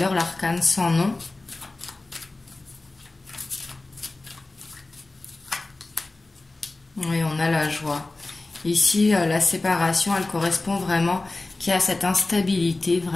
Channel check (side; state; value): right; quieter; 3.1 dB